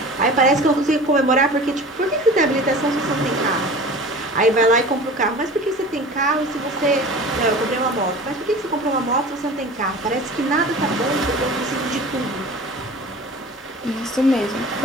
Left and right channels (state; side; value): normal; both; correlation 0.39